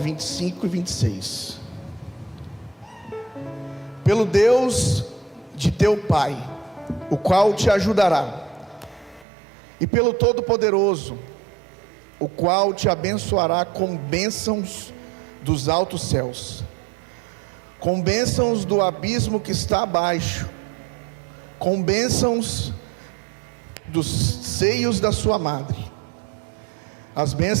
e 26. Pelo Deus de teu pai, o qual te ajudará, e pelo Todo-Poderoso, o qual te abençoará com bênçãos dos altos céus, com bênçãos do abismo que está abaixo, com bênçãos dos seios da sua madre. As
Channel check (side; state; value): left; drops out; at 9.2 s